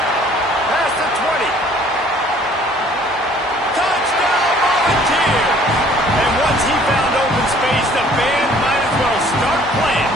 Past the 20. Touchdown Volunteers! And once he found open space, the band might as well start playing.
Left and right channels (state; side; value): normal; both; correlation 0.56